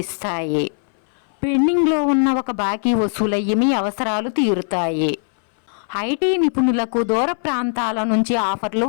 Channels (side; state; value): right; silent; 60 dB below the other